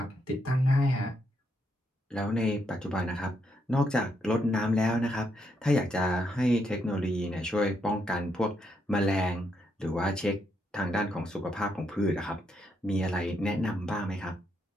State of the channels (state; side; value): normal; both; correlation 0.78